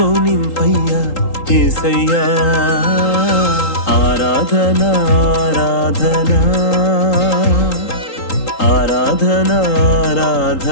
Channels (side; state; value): right; late; 3.8 ms